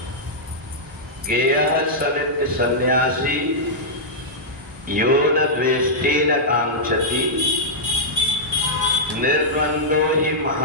गेयः स नित्य सन्यासी यो न द्वेष्टि न कांक्षति निर्द्वंदो ही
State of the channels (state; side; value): normal; both; correlation -0.10